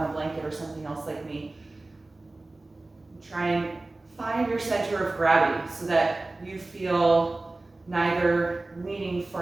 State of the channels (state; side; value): quieter; left; 3.0 dB